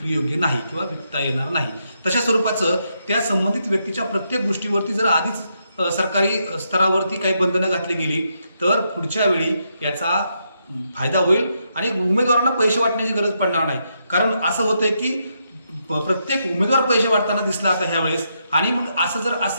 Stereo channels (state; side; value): inverted; both; correlation -0.80